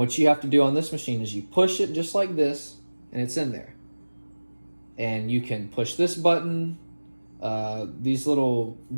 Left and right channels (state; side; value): inverted; both; correlation -1.00